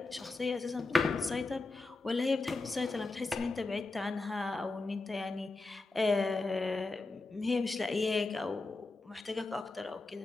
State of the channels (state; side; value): quieter; right; 3.4 dB